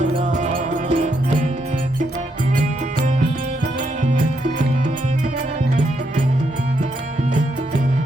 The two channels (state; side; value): normal; both; correlation 0.78